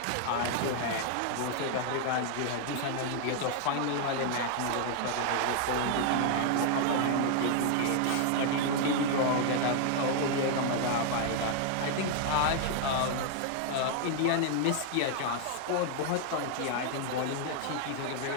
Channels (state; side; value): different; both; correlation 0.00